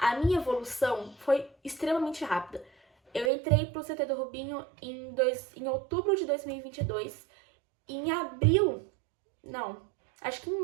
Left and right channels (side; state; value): left; drops out; at 3.3 s